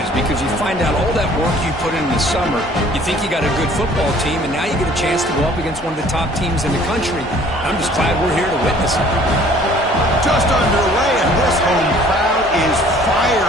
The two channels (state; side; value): normal; both; correlation 0.54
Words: because you find out all that work you put in the summer. You think you got a good football team, and now you get a chance to go up against one of the top teams in the country. I'm just glad we're here to witness it. Just underway, and this home crowd is